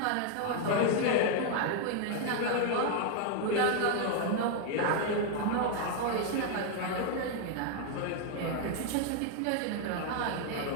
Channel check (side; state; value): both; different; correlation 0.00